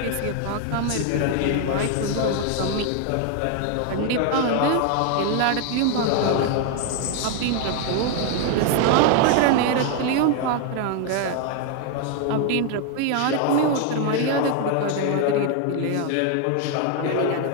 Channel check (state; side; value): different; both; correlation 0.01